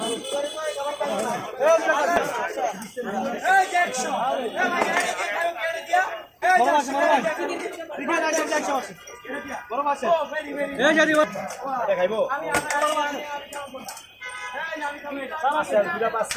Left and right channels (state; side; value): identical; both; correlation 1.00